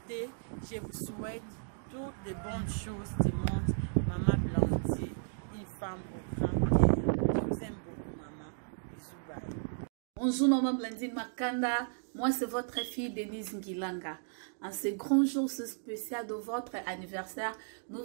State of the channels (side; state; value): left; silent; digital silence